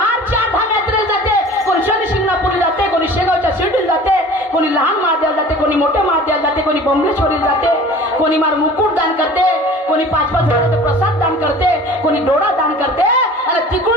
8 यात्रेला जाते, कोणी शनी शिंगणापूरला जाते, कोणी शेगावच्या शिर्डीला जाते, कोणी लहान महादेवाला जाते, कोणी मोठ्या महादेवाला जाते, कोणी बंबलेश्वरीला जाते, कोणी मार मुकुट दान करते, कोणी 5-5 हजाराचा प्रसाद दान करते, कोणी डोळा दान करते. आणि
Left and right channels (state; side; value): normal; both; correlation 0.44